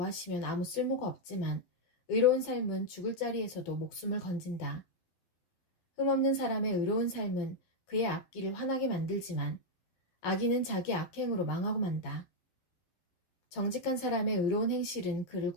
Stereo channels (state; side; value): late; right; 12 ms